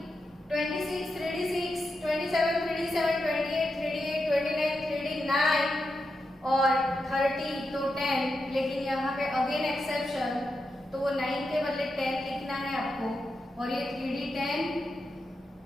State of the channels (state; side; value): normal; both; correlation 0.87